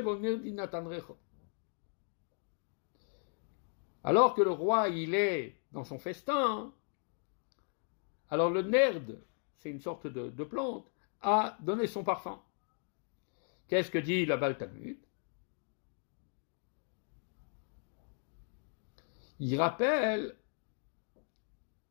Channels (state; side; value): silent; right; 53 dB below the other